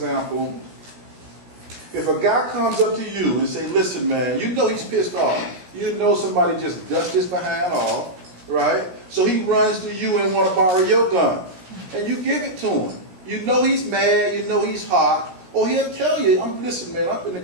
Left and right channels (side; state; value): left; late; 17 ms